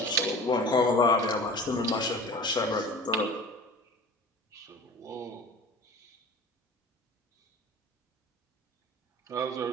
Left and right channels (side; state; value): both; normal; correlation 0.39